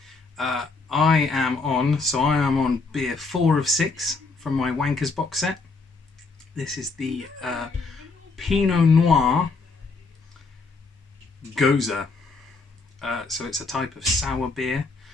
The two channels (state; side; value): quieter; right; 4.0 dB